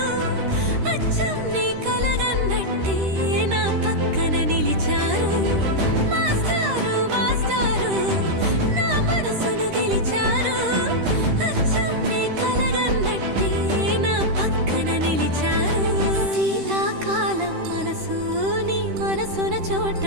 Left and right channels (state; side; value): late; left; 13 ms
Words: అచ్చం నీ కలగన్నట్టే నా పక్కన నిలిచారు మాస్టారు మాస్టారు నా మనసును గెలిచారు అచ్చం నీ కలగన్నట్టే నా పక్కన నిలిచారు శీతాకాలం మనసు నీ మనసున